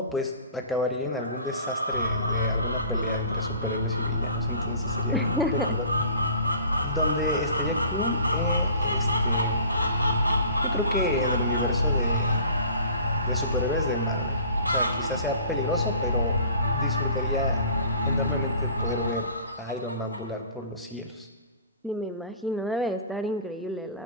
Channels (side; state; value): both; inverted; correlation -0.46